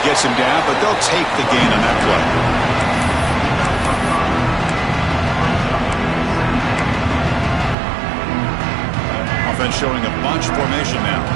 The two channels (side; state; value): left; drops out; at 7.8 s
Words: gets him down, but they'll take the gain on that play. Offense showing a bunch formation now.